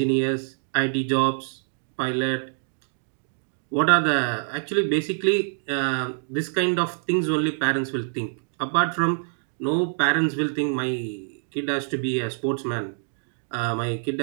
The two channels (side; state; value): left; silent; digital silence